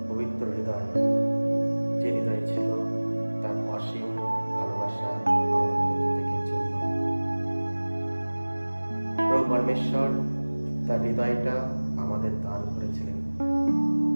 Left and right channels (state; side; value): inverted; both; correlation -1.00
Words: পবিত্র হৃদয়, যে হৃদয় ছিল তার অসীম ভালোবাসা আমাদের প্রত্যেকের জন্য। প্রভু পরমেশ্বর তার হৃদয়টা আমাদের দান করেছিলেন।